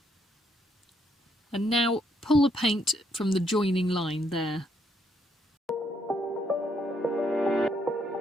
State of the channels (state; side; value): normal; both; correlation 0.73